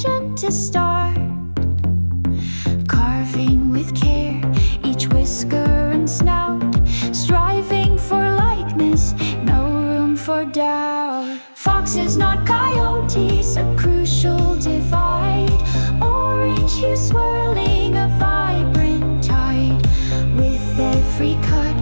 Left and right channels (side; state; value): both; inverted; correlation -1.00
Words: to start. Carving with care, each whisker and snout, striving for likeness, no room for doubt. Foxes, not coyotes, a crucial divide. Orange hue swirling a vibrant tide. With every cut,